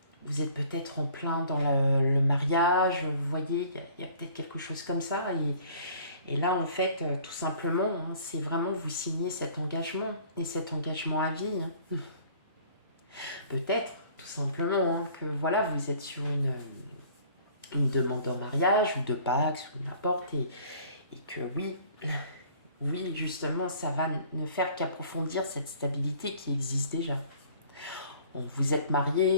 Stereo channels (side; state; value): both; inverted; correlation -0.52